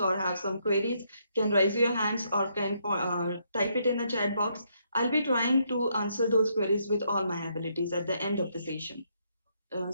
have some queries, can raise your hands or can type it in the chat box. I'll be trying to answer those queries with all my abilities at the end of the session.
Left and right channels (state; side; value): inverted; both; correlation -0.75